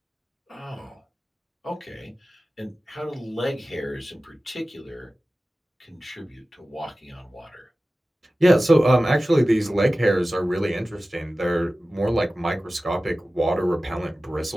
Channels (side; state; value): both; normal; correlation 0.96